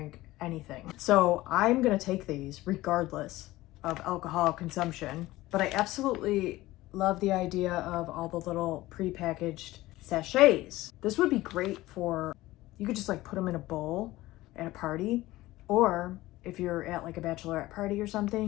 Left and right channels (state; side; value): quieter; right; 17.7 dB